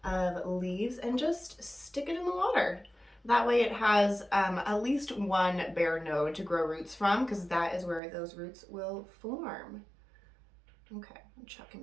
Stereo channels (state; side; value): drops out; left; at 8.0 s